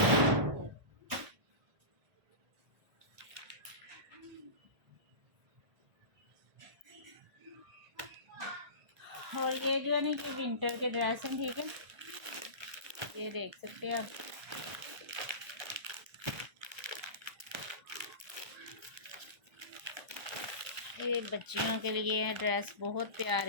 और ये जो है ना कि विंटर के ड्रेस हैं, ठीक है, ये देख सकते हैं आप। ये बच्चियों के लिए ड्रेस बहुत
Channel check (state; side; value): late; left; 1.3 ms